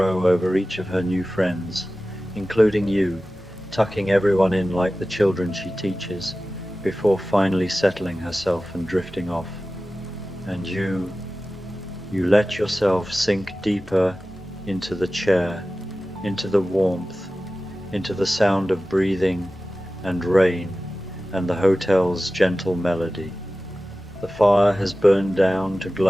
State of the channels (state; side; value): normal; both; correlation 0.96